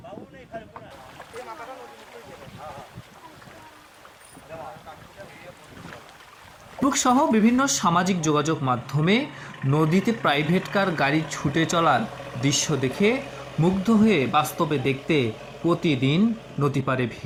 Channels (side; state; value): both; identical; correlation 1.00